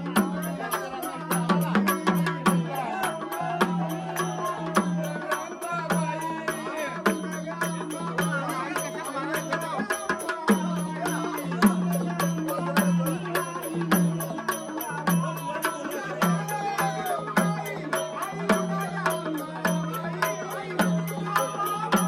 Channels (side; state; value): both; identical; correlation 1.00